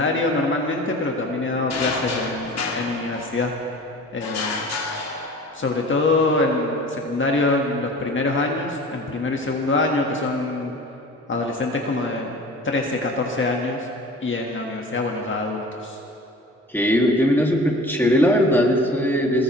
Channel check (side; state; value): both; normal; correlation 0.41